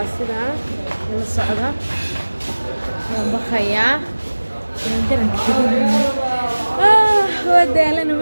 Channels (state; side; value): inverted; both; correlation -1.00